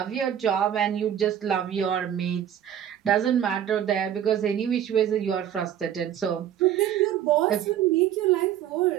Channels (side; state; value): left; quieter; 10.3 dB